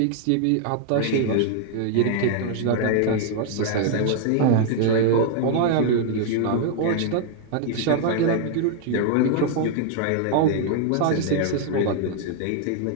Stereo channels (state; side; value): different; both; correlation 0.00